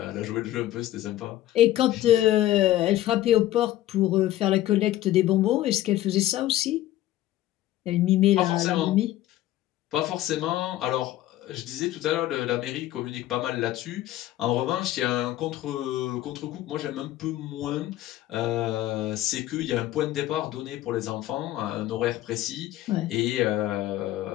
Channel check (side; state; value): right; quieter; 14.2 dB